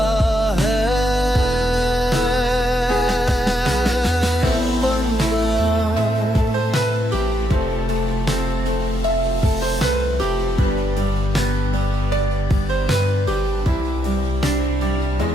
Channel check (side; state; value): both; normal; correlation 0.78